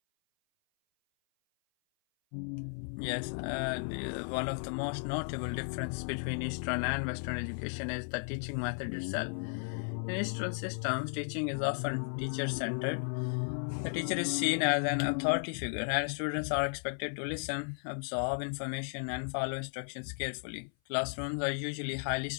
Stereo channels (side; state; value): right; silent; 55 dB below the other